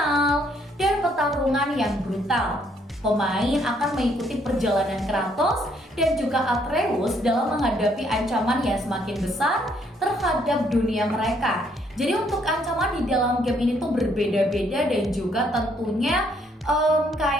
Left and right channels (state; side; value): normal; both; correlation 0.68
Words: dan pertarungan yang brutal. Pemain akan mengikuti perjalanan Kratos dan juga Atreus dalam menghadapi ancaman yang semakin besar terhadap dunia mereka. Jadi untuk ancaman di dalam game ini tuh berbeda-beda dan juga tentunya